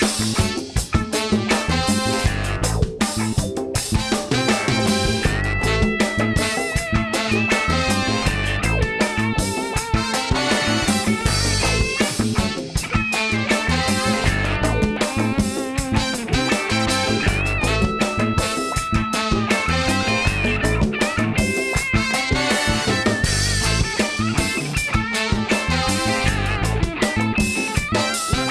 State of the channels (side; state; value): both; identical; correlation 1.00